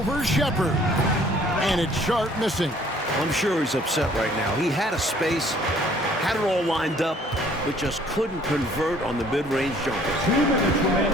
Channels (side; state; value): both; normal; correlation 0.58